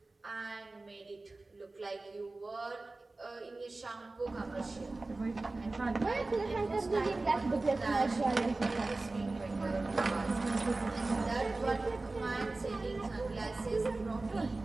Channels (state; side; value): quieter; left; 3.2 dB